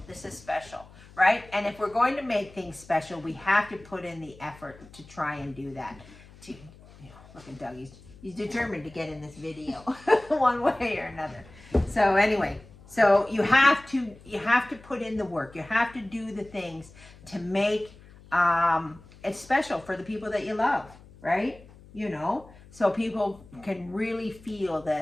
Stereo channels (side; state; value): left; noise; hum, 22 dB below the sound